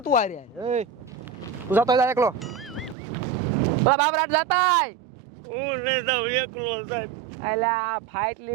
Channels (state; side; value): drops out; left; at 3.0 s